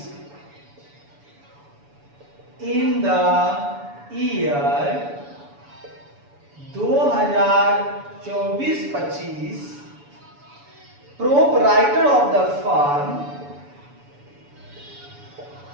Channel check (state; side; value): late; left; 7.0 ms